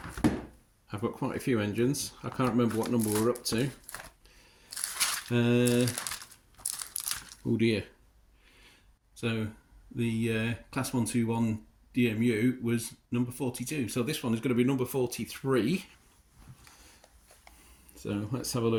a few engines. I can't remember what number we're up to. Oh dear. So the class 121 DMU was number 42. So this one is going to be number 43. So let's have a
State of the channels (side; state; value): both; identical; correlation 1.00